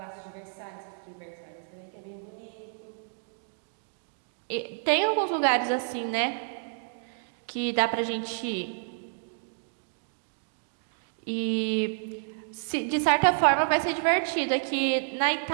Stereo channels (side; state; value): left; silent; digital silence